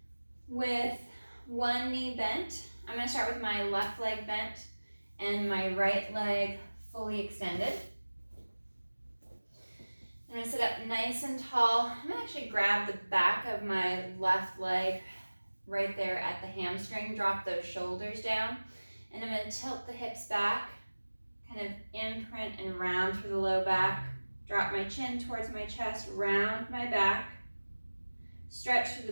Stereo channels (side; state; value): both; inverted; correlation -1.00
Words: with one knee bent. I'm going to start with my left leg bent and my right leg fully extended. I'm going to sit up nice and tall. I'm going to actually grab the back of my left leg right there at the hamstring, drop those shoulders down, and I'm going to tilt the hips back, kind of imprint and round through the low back, drop my chin towards my chest, round my back, stretch through